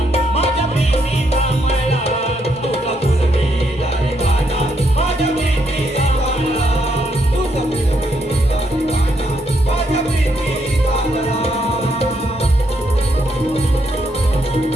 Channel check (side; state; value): both; normal; correlation 0.75